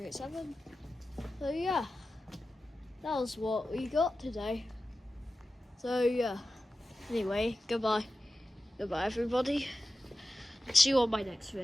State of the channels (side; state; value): both; normal; correlation 0.93